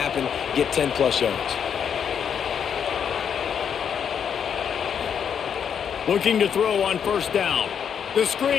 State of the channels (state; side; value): quieter; right; 7.8 dB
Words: get 10-plus yards. Looking to throw on first down. The